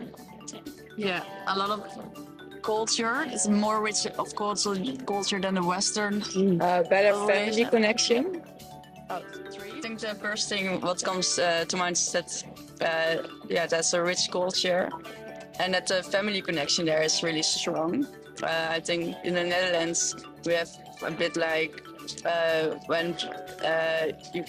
Yeah, a lot of culture. It's more rich of culture than the Western. Better family connection. I think the first thing what comes to mind is that that's a rich culture. and that the family connection there is really strong. I think in the Netherlands we have a bit like when you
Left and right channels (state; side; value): identical; both; correlation 1.00